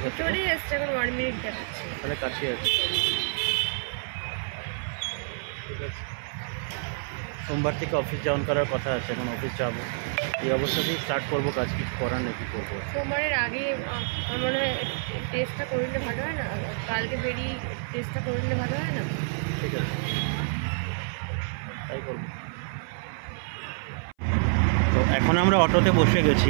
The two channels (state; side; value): silent; left; 57 dB below the other